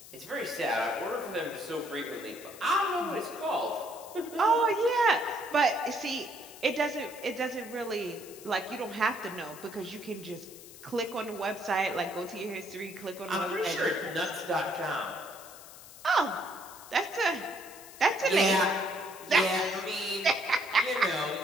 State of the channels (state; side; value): noise; left; hiss, 17 dB below the sound